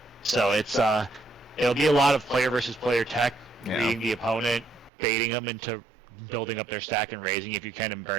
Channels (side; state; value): left; drops out; at 4.9 s